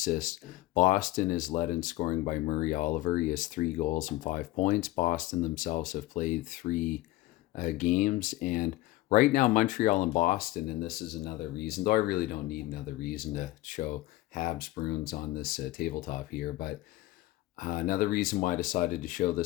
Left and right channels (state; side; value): quieter; right; 17.7 dB